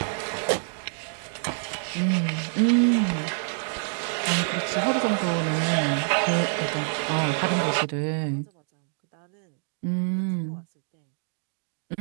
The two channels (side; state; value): left; silent; digital silence